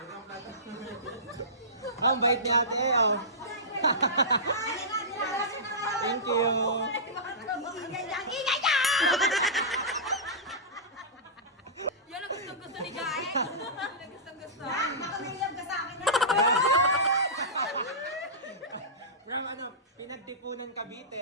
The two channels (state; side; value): normal; both; correlation -0.19